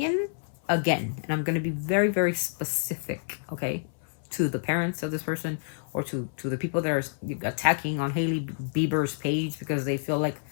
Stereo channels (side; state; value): right; silent; 59 dB below the other